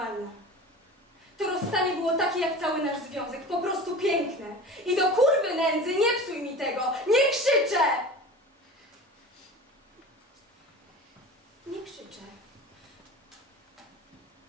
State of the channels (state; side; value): normal; both; correlation 0.35